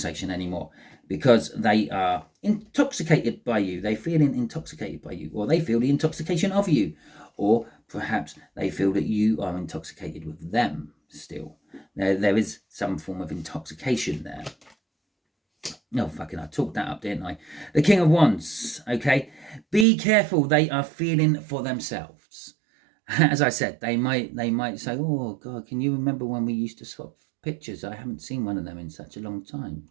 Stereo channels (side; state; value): left; drops out; at 19.9 s